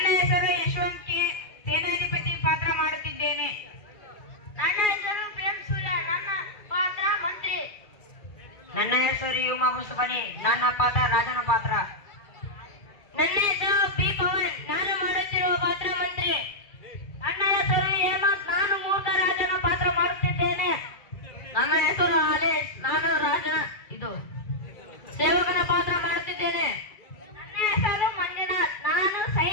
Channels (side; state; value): right; late; 2.4 ms